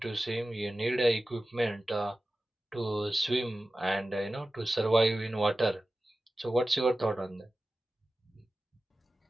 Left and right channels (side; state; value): both; normal; correlation 0.95